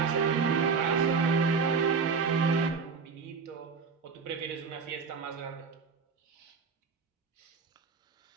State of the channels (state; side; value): quieter; left; 5.3 dB